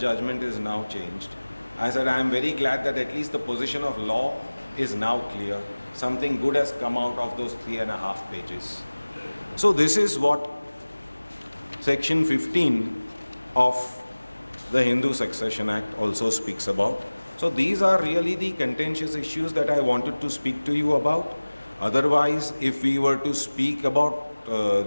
is now changed. I said, I am very glad that at least the position of law is now clear. Something good has come out of those 3.5 pages. So this is what Section 15 of the Hindu Succession Act also speaks about. So these are really the contentious issues that I wanted to speak to you about. Otherwise, if we were to speak about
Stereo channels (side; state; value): both; inverted; correlation -1.00